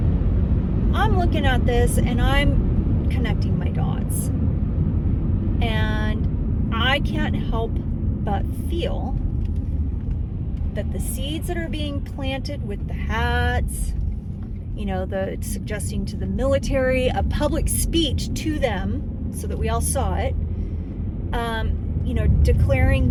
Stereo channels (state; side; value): identical; both; correlation 1.00